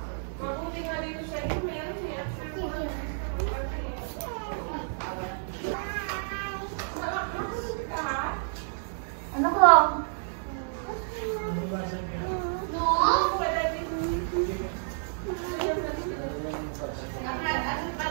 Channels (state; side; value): silent; left; digital silence